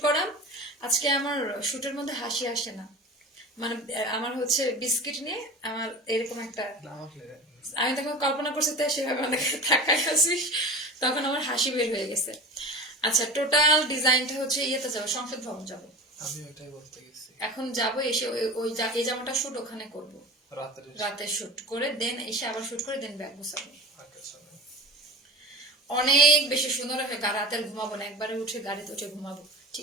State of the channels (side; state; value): both; normal; correlation 0.34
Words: করা। আজকে আমার শুটের মধ্যে হাসি আসে না, মানে আমার হচ্ছে বিস্কিট নিয়ে আমার এরকম একটা, আমি তখন কল্পনা করছি তাই সেভাবে অনেকে তাকাই আসিস, তখন আমার হাসি বের হয়ে গেছে। আচ্ছা টোটাল ডিজাইনটা হচ্ছে ইয়েতে যাবো, সংসদ ভবন যাবো, আমি ওইটাই বলতে গেছি। এখন যাবো, এসে ওই এই জামাটা শুট ওখানে করবো, রাতে শুট করে দেন এসে আবার শুট করে দেন ব্যাগ গোছাবো। অনেক বেশি সুন্দর হবে, রাতে আর ঘুমাবো না, একবারে উঠে গাড়িতে উঠে ঘুমাবো,